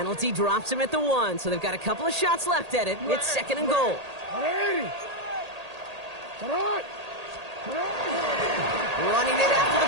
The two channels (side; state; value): left; late; 1.8 ms